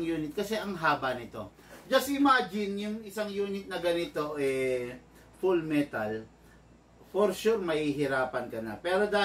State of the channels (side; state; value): both; identical; correlation 1.00